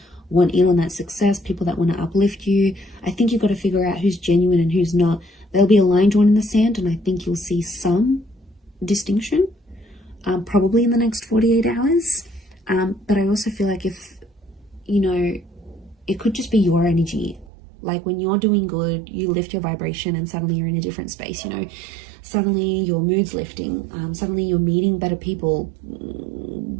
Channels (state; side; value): drops out; left; at 17.4 s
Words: want in on that success, people that want to uplift you. I think you've got to figure out who's genuine and who's not. There'll be a line drawn in the sand, and I think you'll see some distinction, probably in the next 48 hours. But I also feel like if, you know, it could just be your energy. Like when you're doing good, you lift your vibration and suddenly you're in a different space, you know. Suddenly your mood's lifting. Suddenly you're meeting better people.